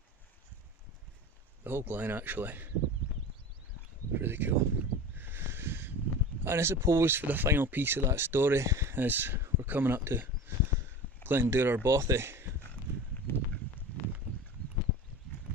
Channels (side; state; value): both; normal; correlation 0.33